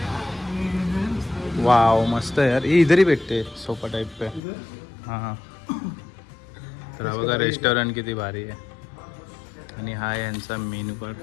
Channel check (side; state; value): right; drops out; at 4.4 s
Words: वाव, मस्त आहे यार. ये इधर ही भेटते सोफा टाइप पे. हां, तर हा बघा रेस्टॉरंट किती भारी आहे. आणि हा आहे यांचा मेन्यू कार्ड.